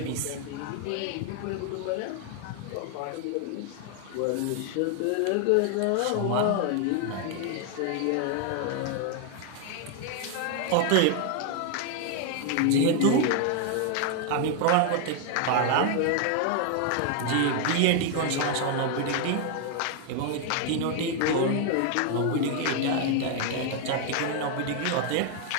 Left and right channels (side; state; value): both; different; correlation 0.00